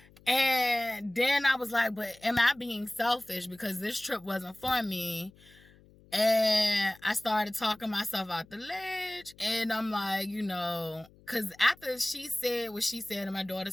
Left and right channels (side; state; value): left; noise; hum, 26 dB below the sound